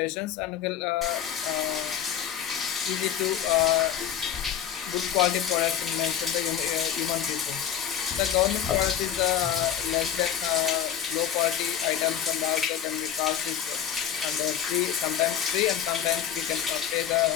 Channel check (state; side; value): quieter; right; 9.6 dB